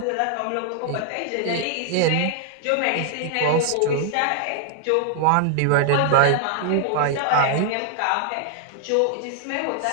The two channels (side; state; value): both; different; correlation 0.00